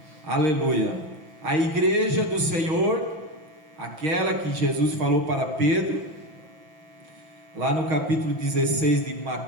Aleluia. A igreja do Senhor, aquela que Jesus falou para Pedro, lá no capítulo 16 de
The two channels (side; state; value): left; late; 5.9 ms